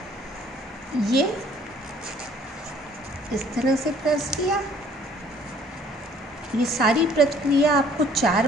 ये इस तरह से प्रेस किया। ये सारी प्रक्रिया आपको 4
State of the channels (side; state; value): both; normal; correlation 0.58